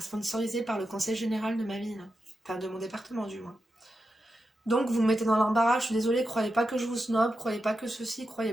sponsoriser par le conseil général de ma ville. Enfin, de mon département, du moins. Donc, vous me mettez dans l'embarras, je suis désolée, croyez pas que je vous snob, croyez pas que ceci,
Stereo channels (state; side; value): normal; both; correlation 0.89